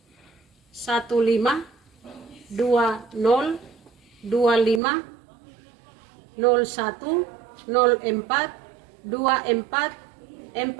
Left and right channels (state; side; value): drops out; left; at 4.8 s